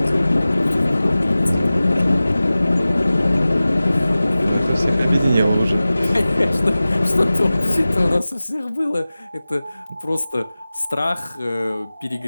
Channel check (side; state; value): both; inverted; correlation -0.97